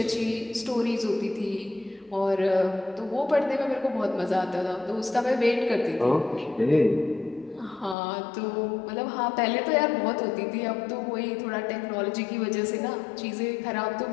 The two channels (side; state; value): right; drops out; at 8.0 s